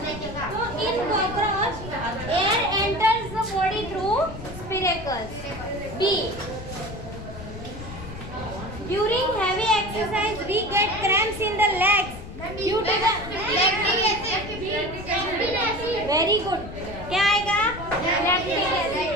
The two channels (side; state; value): left; noise; rumble, 11 dB below the sound